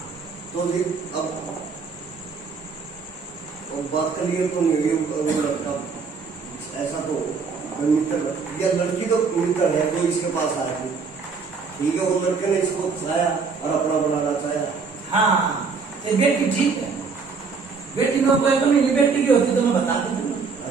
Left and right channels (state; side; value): quieter; left; 5.0 dB